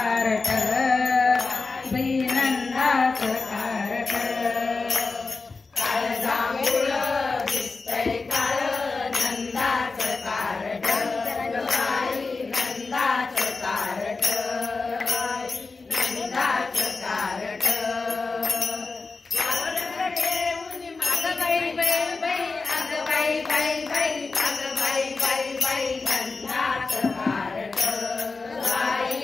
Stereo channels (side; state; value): right; quieter; 4.0 dB